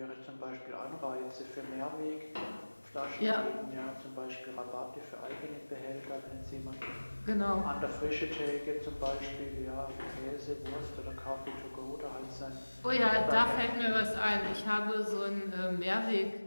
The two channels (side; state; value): both; inverted; correlation -1.00